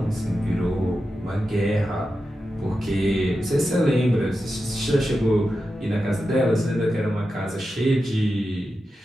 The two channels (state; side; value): normal; both; correlation 0.90